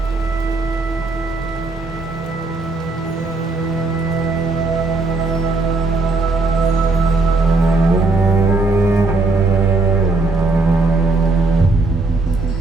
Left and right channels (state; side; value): quieter; left; 3.4 dB